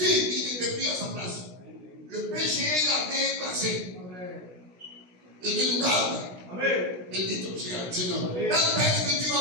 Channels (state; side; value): late; left; 16 ms